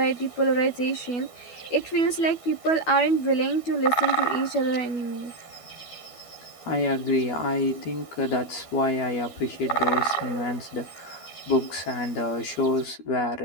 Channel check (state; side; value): late; right; 12 ms